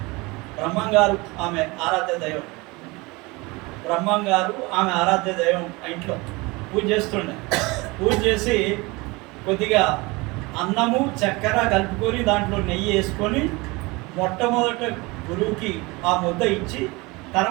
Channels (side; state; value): left; quieter; 24.4 dB